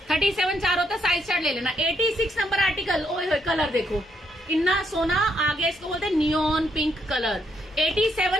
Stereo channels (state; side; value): normal; both; correlation 0.75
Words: 37 4 होता है, साइज चार्ट ले लेना। 86 नंबर आर्टिकल, ओए होए कलर देखो इतना सोना आ गया, इसको बोलते हैं neon pink colour.